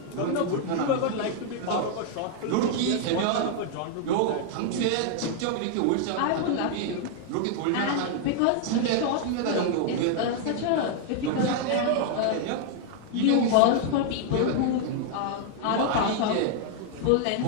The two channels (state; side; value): different; both; correlation 0.00